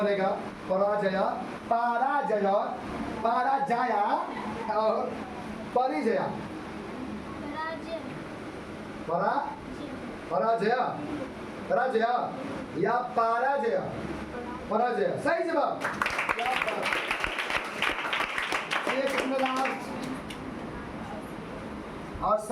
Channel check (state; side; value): identical; both; correlation 1.00